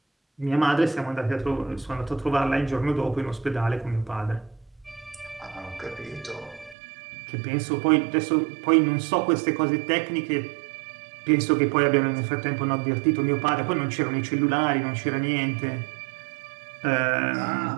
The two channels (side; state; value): left; drops out; at 6.8 s